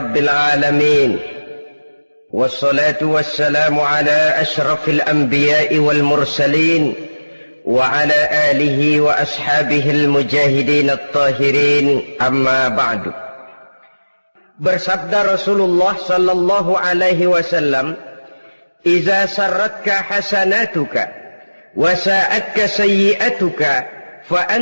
alamin. Wassalatu wassalamu ala ashrafil anbiya'i wal mursalin wa ala alihi wa ashabihil mujahidin at-tahirin, amma ba'du. Bersabda Rasulullah sallallahu alaihi wasallam, "Iza sarratka hasanatuka wa sa'atka sayyi'atuka fa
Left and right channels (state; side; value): inverted; both; correlation -1.00